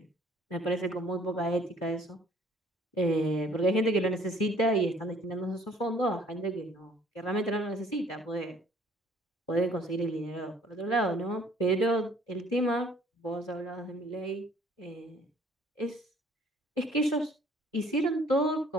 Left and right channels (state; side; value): normal; both; correlation 0.57